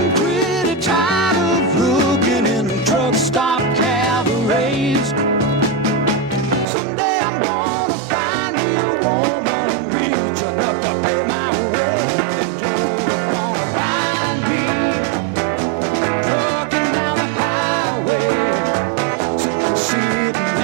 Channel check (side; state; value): left; drops out; at 6.7 s